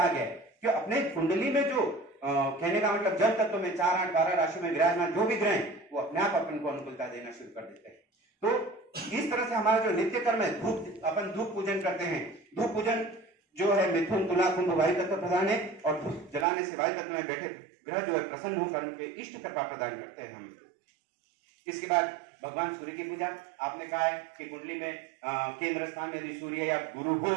गया है कि अपने कुंडली में जो कहने का मतलब जल तत्व में 4, 8, 12 राशि में विराजमान जो भी ग्रह हैं वो अपने आप अपन को अनुकूलता देना शुरू कर देते हैं। तो इस तरह से हमारा जो नित्य कर्म है, अपन धूप पूजन करते हैं। धूप पूजन जो है मिथुन, तुला, कुंभ वायु तत्व प्रधान है, और धूप जलाने से वायु तत्व में बैठे ग्रह जो है प्रसन्न होकर उनके इष्ट कृपा प्रदान करते हैं हम। इसके बाद भगवान सूर्य की पूजा। आपने कहा है कि कुंडली में केंद्र स्थान में यदि सूर्य या गुरु हो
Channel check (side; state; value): left; drops out; at 16.4 s